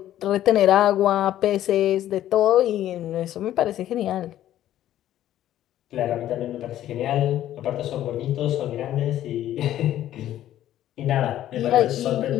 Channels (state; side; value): quieter; right; 12.5 dB